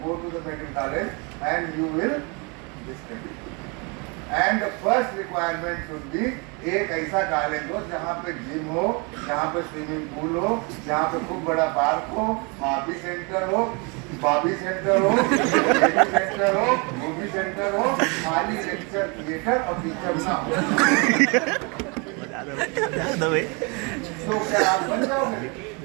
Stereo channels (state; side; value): quieter; left; 31.5 dB